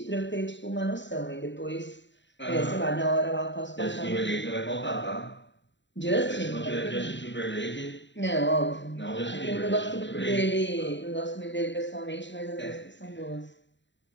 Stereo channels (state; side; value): late; right; 0.53 ms